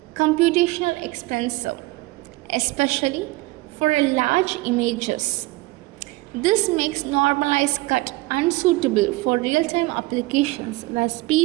computational expensive, especially for a large images. This makes normalized cut unsuitable for real-time applications where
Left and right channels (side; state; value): left; quieter; 20.6 dB